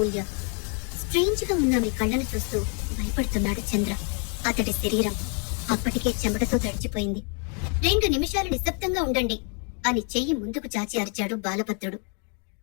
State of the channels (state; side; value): quieter; right; 37.4 dB